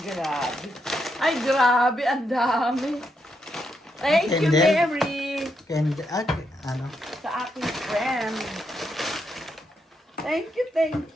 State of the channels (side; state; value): both; normal; correlation 0.81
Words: grabe. Ay, grabe. Ang dami. Thank you, And then- Mary. And, ano? Sa aking friend. Thank